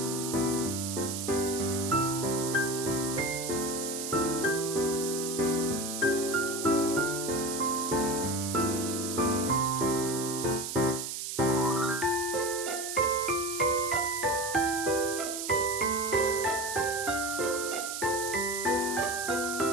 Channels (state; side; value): noise; right; hiss, 5 dB below the sound